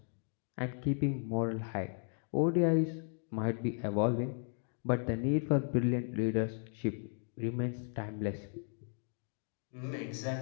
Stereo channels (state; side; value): silent; right; 54 dB below the other